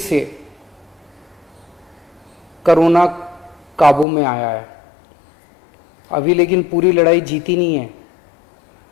कोरोना काबू में आया है अभी, लेकिन पूरी लड़ाई जीती नहीं है।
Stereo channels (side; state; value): right; drops out; at 4.0 s